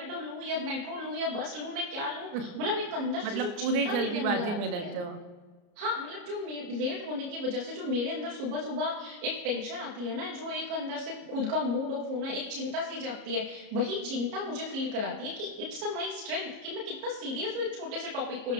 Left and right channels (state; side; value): late; left; 34 ms